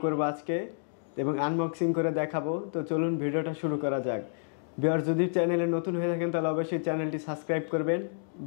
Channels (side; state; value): right; silent; digital silence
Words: করবো আজকে এবং আনবক্সিং করে দেখাবো। তো চলুন ভিডিওটা শুরু করা যাক। ভিউয়ার্স, যদি চ্যানেলে নতুন হয়ে থাকেন তাহলে অবশ্যই চ্যানেলটি সাবস্ক্রাইব করবেন।